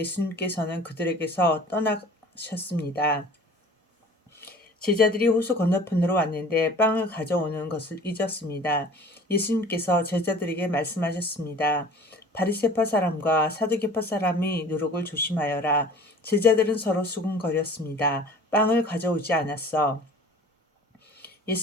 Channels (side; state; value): both; normal; correlation 0.45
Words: 그들에게서 떠나셨습니다. 제자들이 호수 건너편으로 왔는데 빵을 가져오는 것을 잊었습니다. 예수님께서 제자들에게 말씀하셨습니다. 바리새파 사람과 사두개파 사람이 누룩을 조심하여라. 제자들은 서로 수군거렸습니다. 빵을 가져오지 않았어.